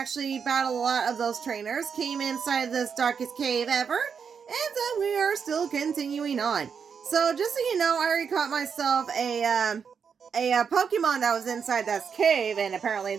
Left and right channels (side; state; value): left; quieter; 6.5 dB